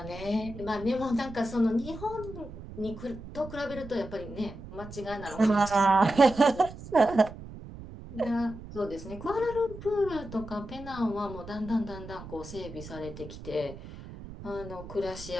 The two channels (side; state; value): right; noise; rumble, 13 dB below the sound